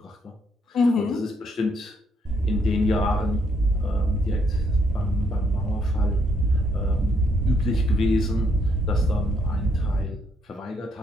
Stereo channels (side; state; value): both; normal; correlation 0.72